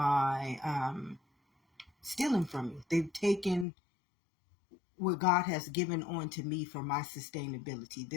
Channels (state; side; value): drops out; right; at 3.7 s